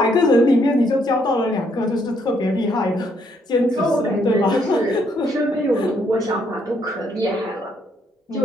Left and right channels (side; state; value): both; normal; correlation 0.71